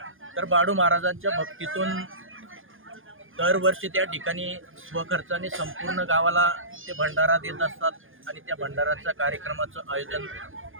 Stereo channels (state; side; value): late; left; 0.59 ms